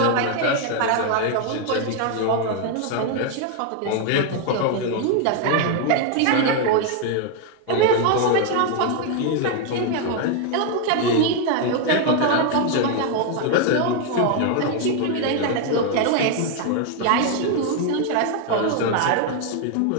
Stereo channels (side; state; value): both; different; correlation 0.01